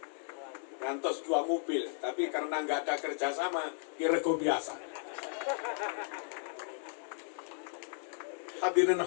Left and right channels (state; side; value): silent; right; digital silence